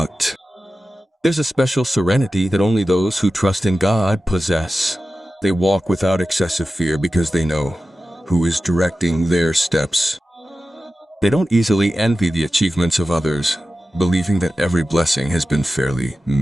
There's a special serenity that only those who trust in God possess. They walk without excessive fear because they know who is directing their steps. They don't easily envy the achievements of others, believing that every blessing has been fairly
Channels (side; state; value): both; normal; correlation 0.94